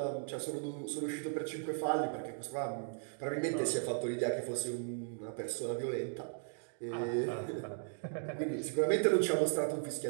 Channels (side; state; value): left; silent; digital silence